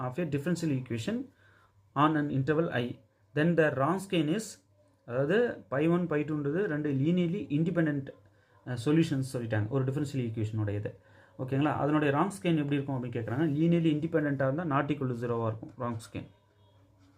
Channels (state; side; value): identical; both; correlation 1.00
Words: of a differential equation on an interval I, then the Wronskian is, அதாவது pi1 pi2ன்றது ரெண்டு linearly independent solutions சொல்லிட்டாங்க ஒரு differential equation உடையது. ஓகேங்களா, அதனுடைய Wronskian எப்படி இருக்கும் அப்படின்னு கேட்குறாங்க. linearly independent-ஆக இருந்தால் not equal to 0-ஆக இருக்கும் Wronskian.